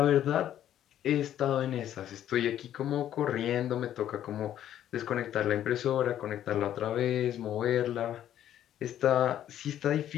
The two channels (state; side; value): quieter; right; 11.2 dB